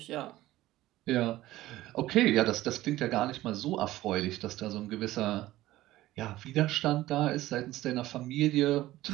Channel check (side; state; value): left; quieter; 16.1 dB